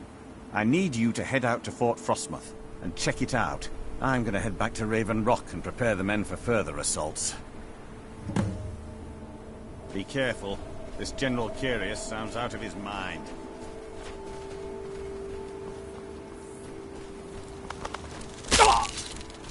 I need you to head out to Fort Frostmoth and check it out. I'm going to head back to Raven Rock and prepare the men for further assaults. Be careful. This General Carius sounds out of his mind.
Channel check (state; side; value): identical; both; correlation 1.00